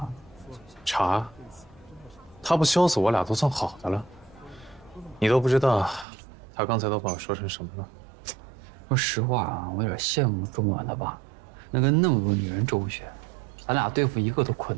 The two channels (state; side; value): drops out; left; at 6.1 s